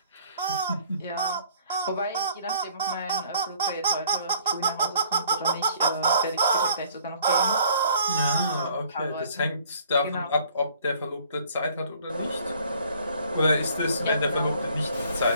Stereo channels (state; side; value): inverted; both; correlation -0.57